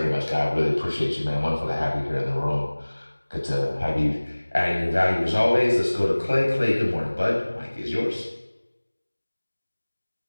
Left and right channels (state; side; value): inverted; both; correlation -1.00